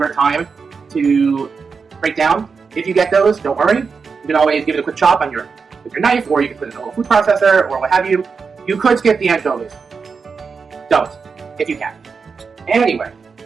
time to break down. If you get those, don't worry. You can always give it a quick chop with your knife, or you can put it in a little food processor, or what have you. You could skip the anchovies. Don't, if you can. Anyway,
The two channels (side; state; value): left; quieter; 5.3 dB